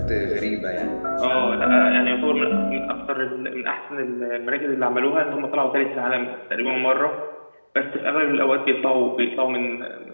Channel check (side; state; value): both; inverted; correlation -1.00